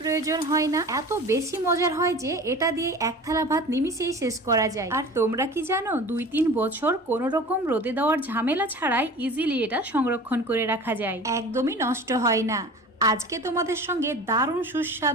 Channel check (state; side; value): normal; both; correlation 0.39